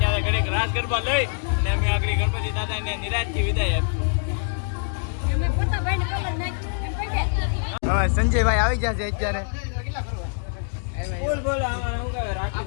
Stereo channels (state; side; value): silent; right; digital silence